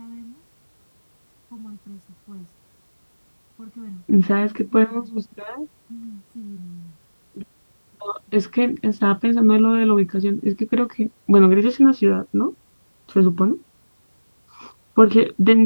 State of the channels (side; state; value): both; inverted; correlation -1.00